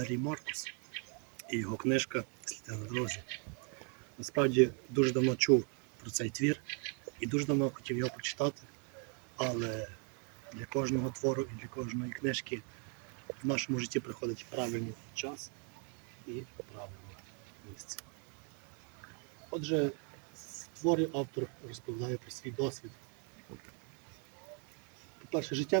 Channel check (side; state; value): left; quieter; 39.8 dB